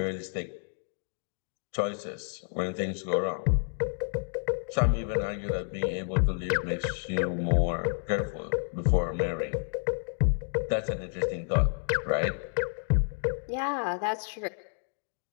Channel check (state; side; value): silent; right; digital silence